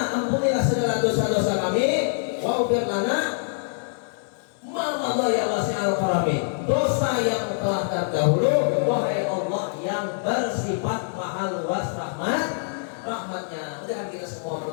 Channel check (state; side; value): silent; right; digital silence